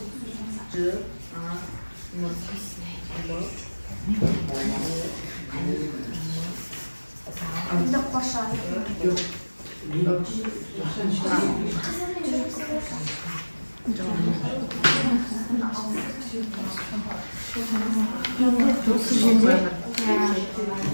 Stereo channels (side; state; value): both; inverted; correlation -1.00